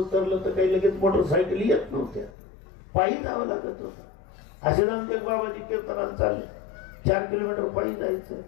तर काही लगेच मोटरसायकल येत नव्हत्या, पायी जावं लागत होतं. असे रामटेक बाबाजी कीर्तनाला चालले, 4 किलोमीटर पायी जायचं.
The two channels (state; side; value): drops out; right; at 2.4 s